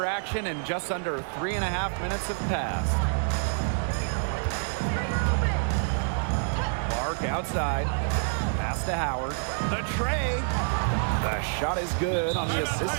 action and just under 3.5 minutes have passed. Clark outside. Pass to Howard. The tray. The shot is good on the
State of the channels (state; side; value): silent; left; digital silence